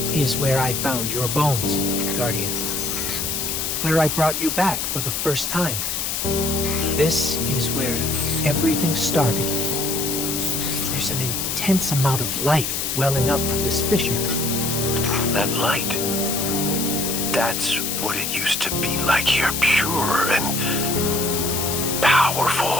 is where I found your bones, Guardian. Where I brought you back for the first time. This is where everything started. There's an intense amount of light welling up from this fissure. That light. That's what it used to be like here. Pure and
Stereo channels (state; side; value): noise; left; hiss, 1 dB below the sound